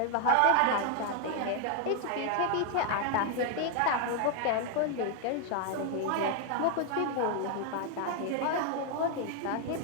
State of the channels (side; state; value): both; different; correlation 0.00